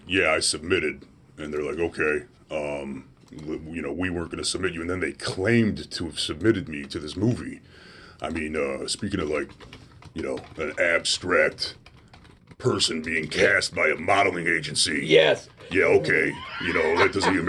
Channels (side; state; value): both; identical; correlation 1.00